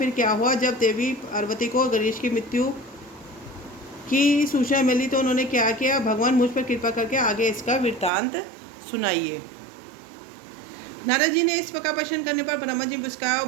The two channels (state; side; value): drops out; left; at 8.1 s